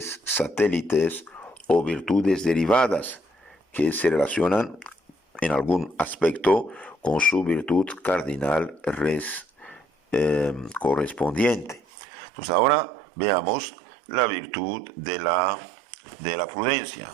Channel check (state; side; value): drops out; left; at 11.8 s